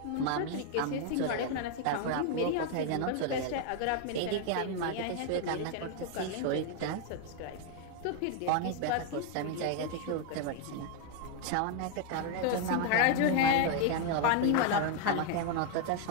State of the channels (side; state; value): both; different; correlation 0.01